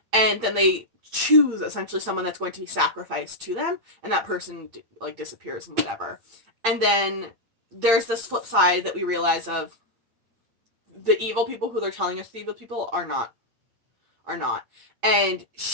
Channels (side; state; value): left; late; 8.8 ms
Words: And then they choose essentially someone that's going to be sacrificed to them, and that person like disappears and whatever. And then there's this flip side that we realize of the evil people who they're telling us the evil people are not. And